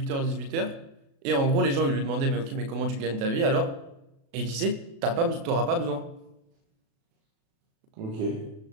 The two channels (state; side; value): late; left; 36 ms